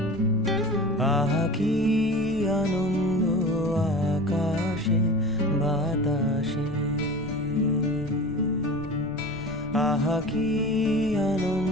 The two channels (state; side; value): noise; left; rumble, 15 dB below the sound